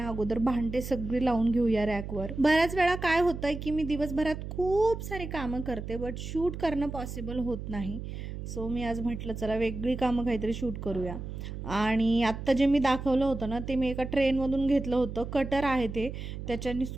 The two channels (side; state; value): right; noise; hum, 8 dB below the sound